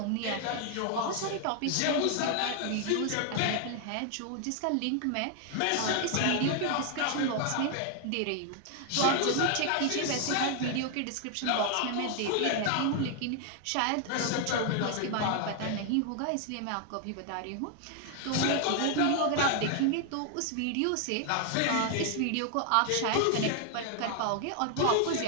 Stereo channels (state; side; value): different; both; correlation 0.00